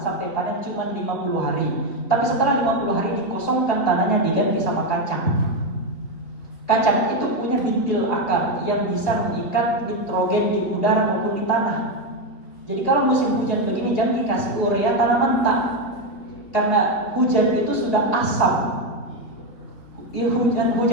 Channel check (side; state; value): right; late; 3.7 ms